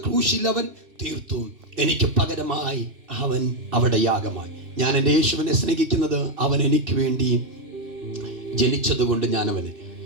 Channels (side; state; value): left; late; 2.7 ms